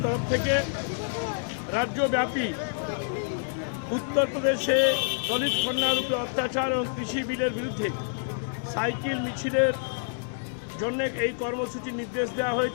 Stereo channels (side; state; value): right; silent; digital silence